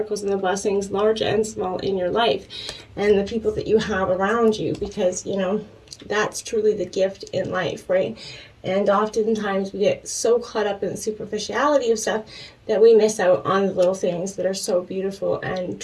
and the blessings, large and small, in your life, and the people that you have around you, because, that's truly the gift in life, right? And oftentimes we get so caught up in the superficiality of stuff that we miss out on the little things that are so beautiful and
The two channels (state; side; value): identical; both; correlation 1.00